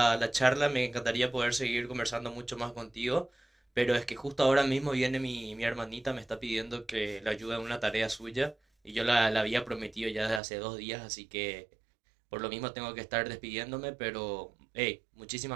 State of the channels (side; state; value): left; drops out; at 10.4 s